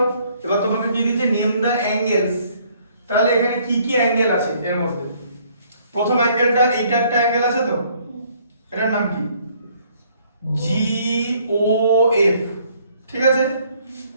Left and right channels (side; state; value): both; inverted; correlation -0.63